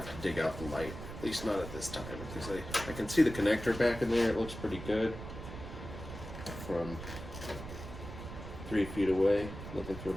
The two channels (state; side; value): noise; right; rumble, 10 dB below the sound